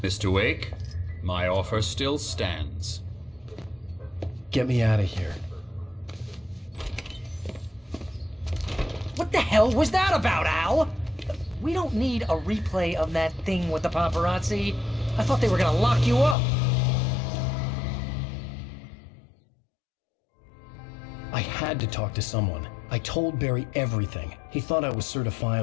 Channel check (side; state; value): right; drops out; at 16.4 s